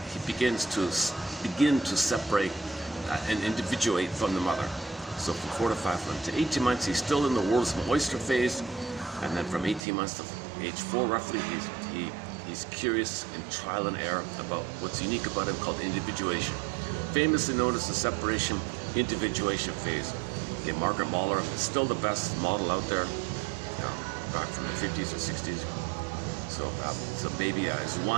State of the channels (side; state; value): left; drops out; at 9.8 s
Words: separate and individuate from the mother. So from 4 to 5 months to 18 months, he's still in the world's oyster phase, and then from 18 months to age 4, roughly, he's curious and trial and error about what's unique about him, called individuation, famously known as the separation individuation phase. Okay, Margaret Mahler is still the best model out there, back from the 50s or 60s. So baby is